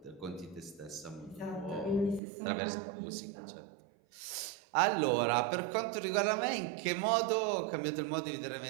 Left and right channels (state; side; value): drops out; left; at 2.2 s